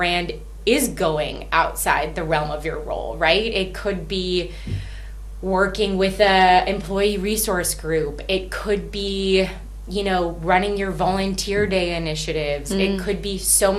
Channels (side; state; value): both; identical; correlation 1.00